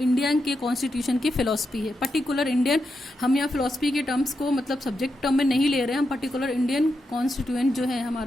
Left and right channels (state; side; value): normal; both; correlation 0.86